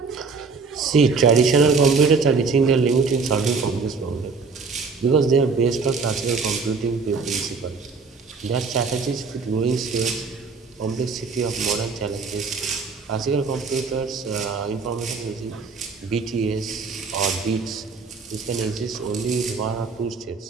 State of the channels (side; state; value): left; quieter; 4.7 dB